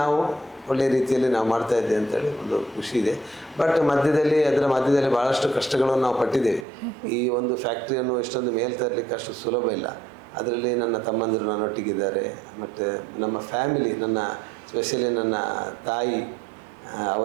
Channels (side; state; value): left; drops out; at 6.7 s